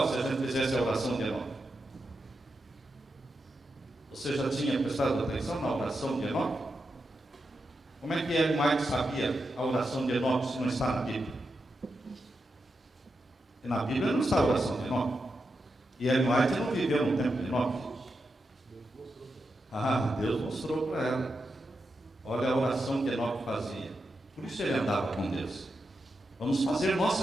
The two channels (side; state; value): both; normal; correlation 0.87